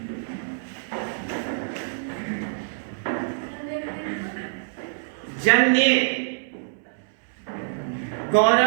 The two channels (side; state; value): left; silent; 61 dB below the other